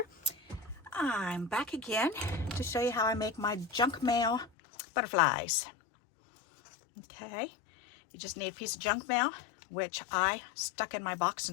I'm back again to show you how I make my junk mail butterflies. Okay, you just need a piece of junk mail, which I stuck in my box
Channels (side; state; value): right; drops out; at 4.5 s